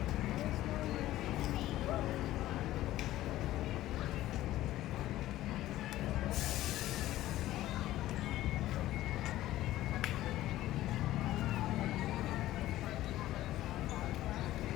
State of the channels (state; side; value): quieter; right; 14.9 dB